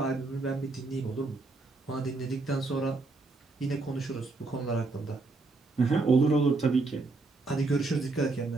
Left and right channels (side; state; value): left; quieter; 3.6 dB